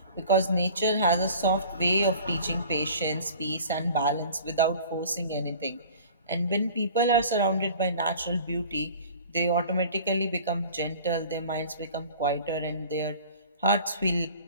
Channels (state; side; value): inverted; both; correlation -0.45